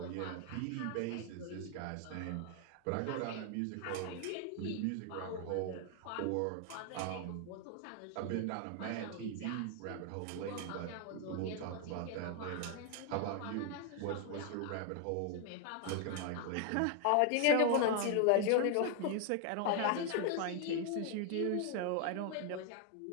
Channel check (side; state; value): both; different; correlation 0.00